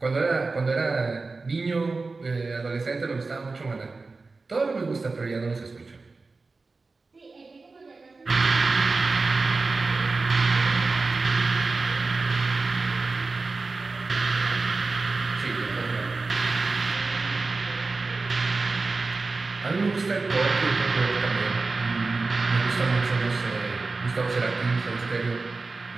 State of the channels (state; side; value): quieter; left; 3.8 dB